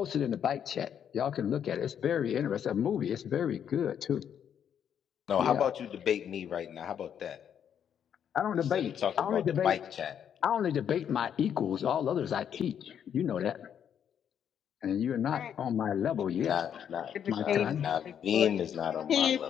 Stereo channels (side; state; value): right; quieter; 8.7 dB